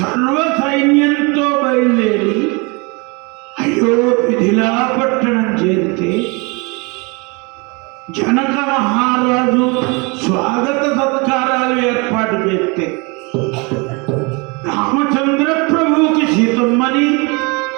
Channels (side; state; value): left; quieter; 29.3 dB